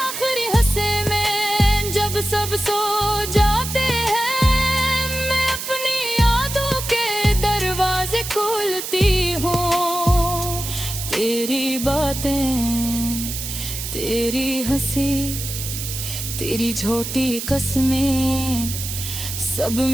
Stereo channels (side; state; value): right; noise; hiss, 6 dB below the sound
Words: हिस्से में जब सब सो जाते हैं, मैं अपनी यादों के दरवाजे खोलती हूँ। तेरी बातें, तेरी हंसी, तेरी छोटी कसमें सब